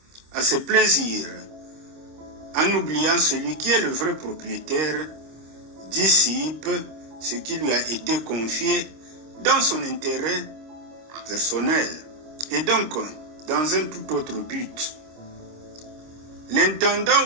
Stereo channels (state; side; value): late; left; 26 ms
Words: à ses plaisirs, en oubliant celui qui est le vrai propriétaire, dissipe ce qui lui a été confié dans son intérêt personnel et donc dans un tout autre but. L'intendant